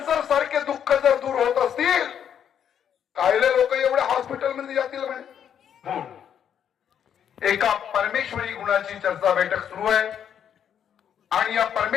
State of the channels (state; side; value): quieter; right; 8.8 dB